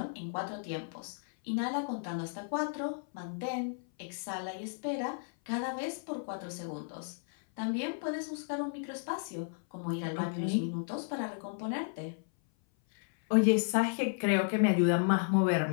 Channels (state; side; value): silent; right; 55 dB below the other